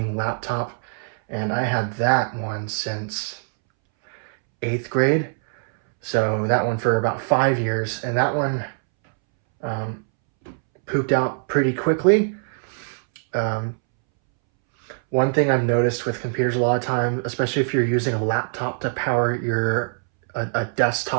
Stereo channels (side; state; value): left; silent; 64 dB below the other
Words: laptop, and I had that one since 8th grade. So that one for about 5 years, and that one pooped out pretty quickly. One thing I've noticed with computers a lot of times, especially if you're using a laptop to power a